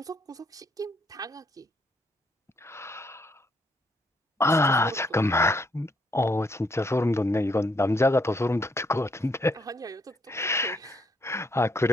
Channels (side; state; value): both; normal; correlation 0.71